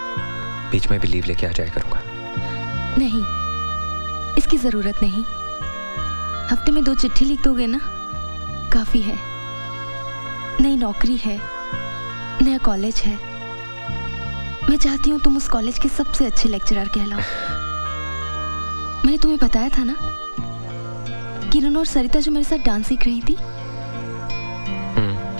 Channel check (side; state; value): both; inverted; correlation -1.00